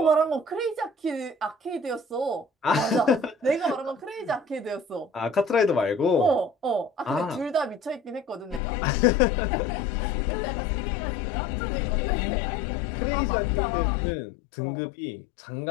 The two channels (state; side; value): drops out; right; at 8.6 s